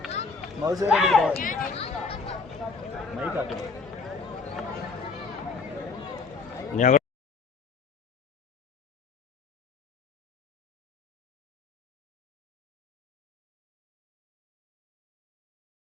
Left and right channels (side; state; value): right; quieter; 4.6 dB